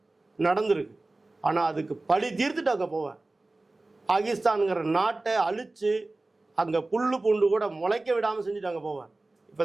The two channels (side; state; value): left; quieter; 3.0 dB